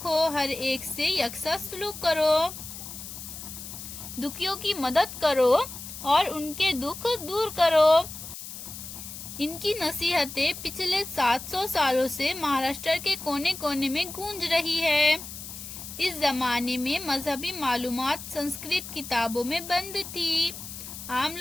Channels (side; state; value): left; noise; hiss, 11 dB below the sound